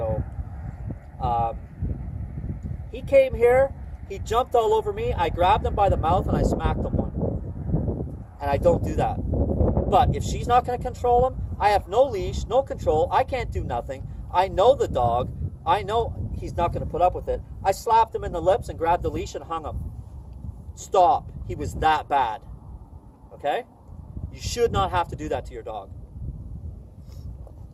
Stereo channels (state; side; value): identical; both; correlation 1.00